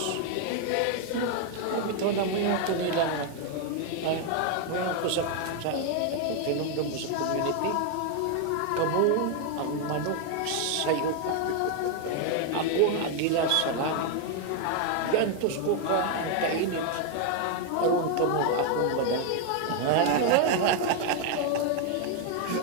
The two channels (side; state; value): both; different; correlation 0.01